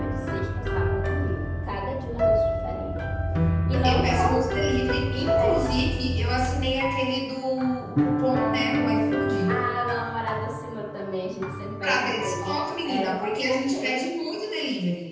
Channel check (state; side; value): identical; both; correlation 1.00